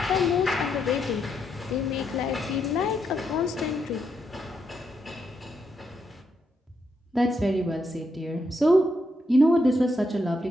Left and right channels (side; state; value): both; normal; correlation 0.80